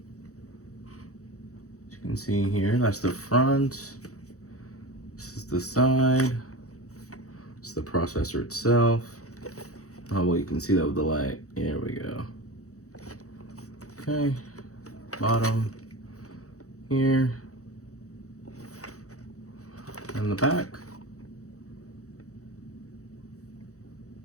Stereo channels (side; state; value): right; late; 0.65 ms